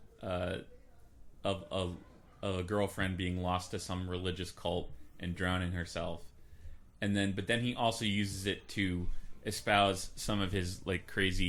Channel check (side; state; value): both; identical; correlation 1.00